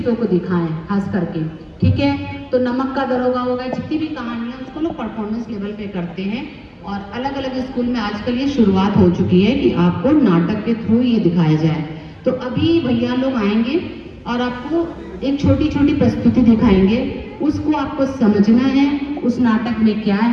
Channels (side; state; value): both; identical; correlation 1.00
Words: को दिखाएं खास करके, ठीक है। तो नमक का दरोगा होगा, जितनी भी कहानियां उसको लोग परफॉर्मेंस लेवल पे करते हैं और अलग अलग स्कूल में आजकल ये शुरुआत हो चुकी है कि आपको नाटक के थ्रू ये दिखाया जाए। तो अभी भैया लोग आएंगे और आपको एक छोटी छोटी प्रस्तुति दिखाएंगे, उसको आपको समझना है उस नाटक में क्या